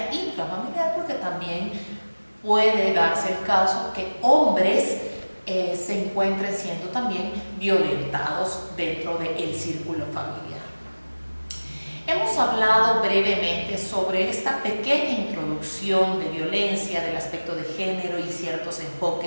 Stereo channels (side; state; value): both; inverted; correlation -1.00